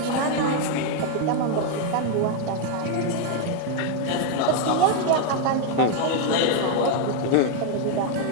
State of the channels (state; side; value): different; both; correlation 0.01